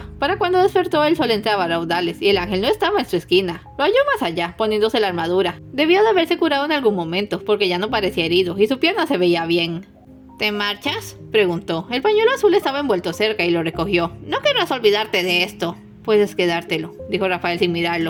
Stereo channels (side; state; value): both; identical; correlation 1.00